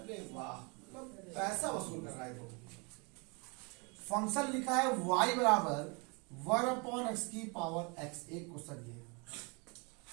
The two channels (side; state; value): left; quieter; 31.6 dB